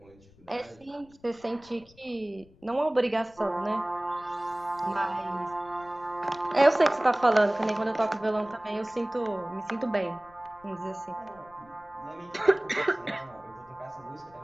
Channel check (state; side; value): noise; left; rumble, 27 dB below the sound